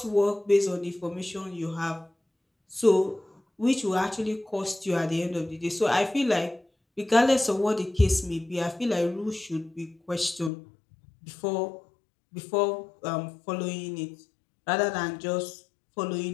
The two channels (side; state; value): right; drops out; at 10.5 s